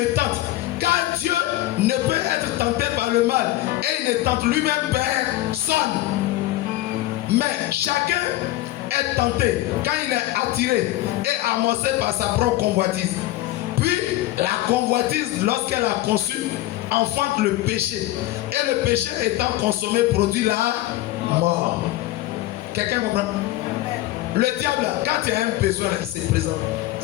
tente. Car Dieu ne peut être tenté par le mal et il ne tente lui-même personne. Mais chacun est tenté quand il est attiré et amorcé par sa propre convoitise. Puis la convoitise, lorsqu'elle a conçu, enfante le péché. Et le péché étant consommé produit la mort. Quelqu'un comprend? Le diable, quand il y a un besoin, il se présente.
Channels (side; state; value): right; quieter; 16.2 dB